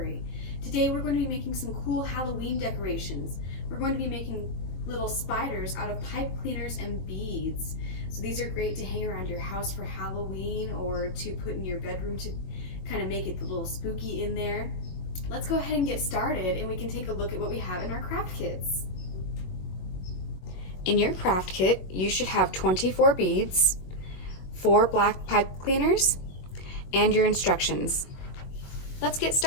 Today we're going to be making some cool Halloween decorations. We're going to be making little spiders out of pipe cleaners and beads. So these are great to hang around your house for Halloween or to put in your bedroom to kind of make it a little spooky in there. Let's go ahead and get started and we can take a look at what we have in our craft kits. In your craft kit, you should have 24 beads, 4 black pipe cleaners, and your instructions. Let's get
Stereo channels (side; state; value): right; late; 23 ms